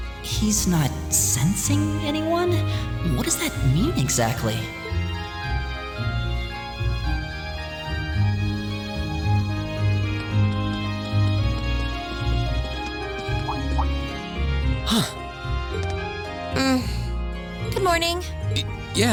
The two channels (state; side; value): identical; both; correlation 1.00